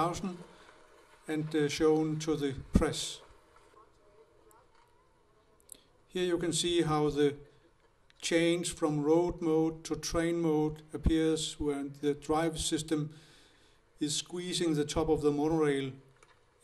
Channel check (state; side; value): identical; both; correlation 1.00